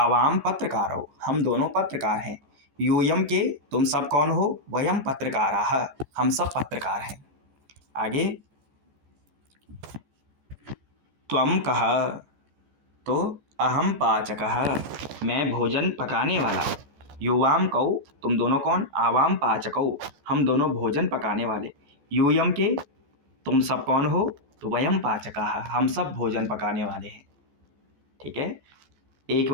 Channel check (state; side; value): late; left; 14 ms